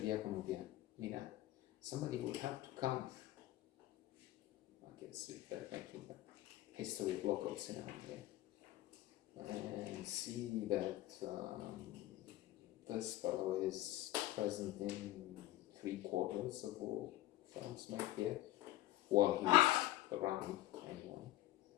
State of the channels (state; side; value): quieter; right; 15.6 dB